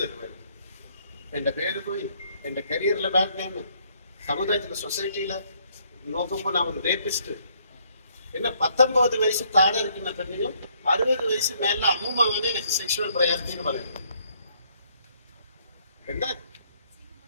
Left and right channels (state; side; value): inverted; both; correlation -0.67